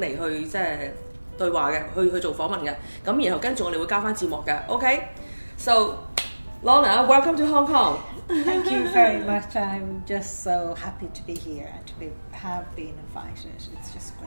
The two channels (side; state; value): both; inverted; correlation -1.00